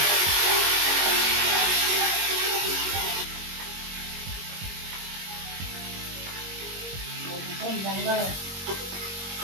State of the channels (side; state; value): left; late; 22 ms